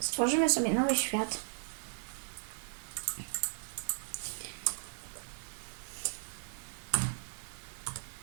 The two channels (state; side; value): silent; left; digital silence